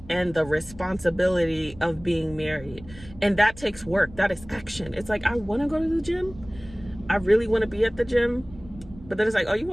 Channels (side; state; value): right; noise; rumble, 19 dB below the sound